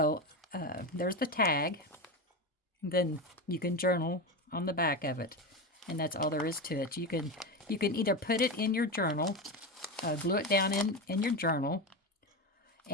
there's the tag. Then you can journal on the back of it, and that's all there is to it. You can either put it in your journal, glue it down in your journal,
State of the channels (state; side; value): normal; both; correlation 0.18